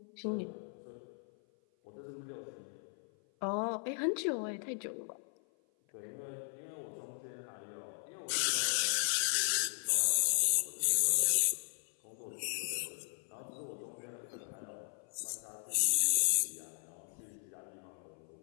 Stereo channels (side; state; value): right; silent; 54 dB below the other